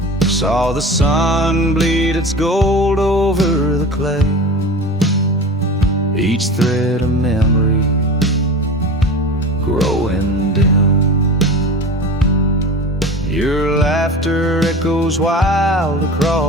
Saw the sun bleed its gold over the clay, each thread a memory growing dim. Your laughter echoes wild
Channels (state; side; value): normal; both; correlation 0.33